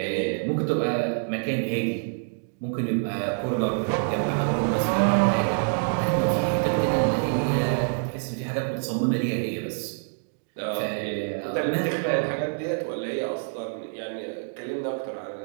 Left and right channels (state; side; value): silent; left; digital silence